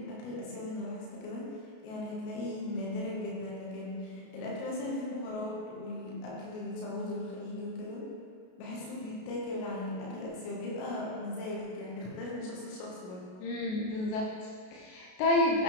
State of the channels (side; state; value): right; late; 33 ms